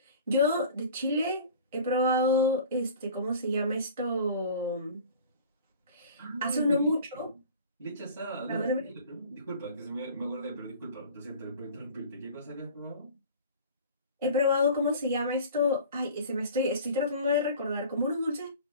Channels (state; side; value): inverted; both; correlation -0.42